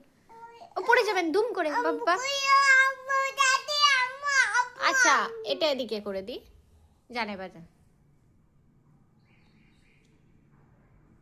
ও পড়ে যাবেন দুম করে বাবা। আচ্ছা এটা এদিকে করে দি। জানে বাজান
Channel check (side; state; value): both; identical; correlation 1.00